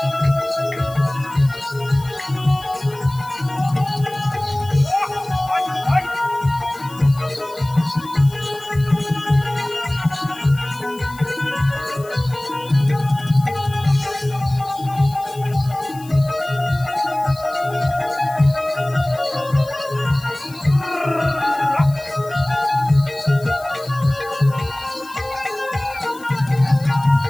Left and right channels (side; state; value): left; noise; hiss, 21 dB below the sound